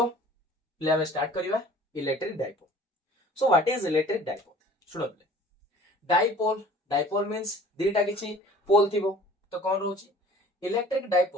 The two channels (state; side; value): normal; both; correlation 0.49